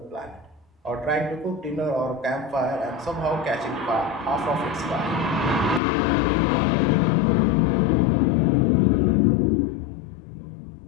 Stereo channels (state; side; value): drops out; right; at 5.8 s